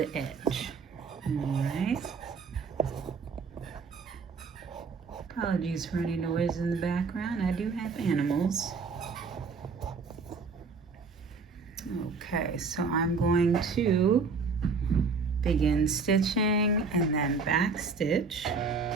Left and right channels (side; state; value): left; quieter; 4.7 dB